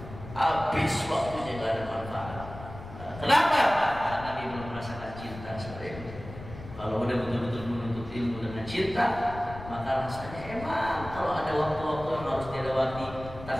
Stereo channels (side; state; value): left; noise; rumble, 13 dB below the sound